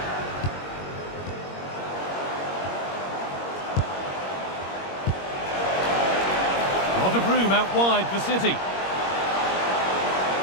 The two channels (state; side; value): late; right; 21 ms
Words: lot of room out wide for City.